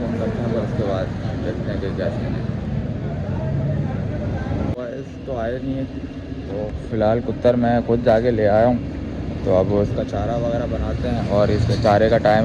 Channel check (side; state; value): both; identical; correlation 1.00